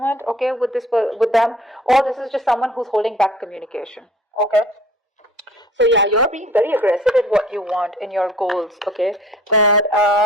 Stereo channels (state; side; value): normal; both; correlation 0.50